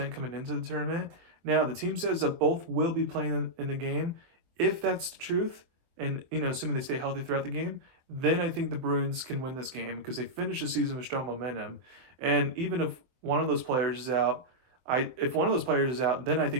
coming into the tournament. Now, the team says that both will be playing in the game. If that's the truth, and assuming they stay healthy throughout the game, then I think the Bruins can win this game because they finish the season with strong momentum. And even if one of those players is out, if one of those players is out, then I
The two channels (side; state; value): left; late; 23 ms